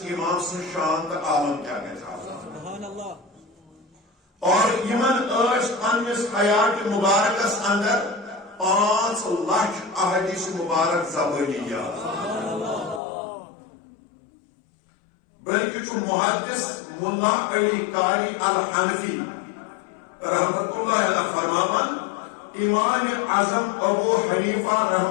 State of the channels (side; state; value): right; drops out; at 13.0 s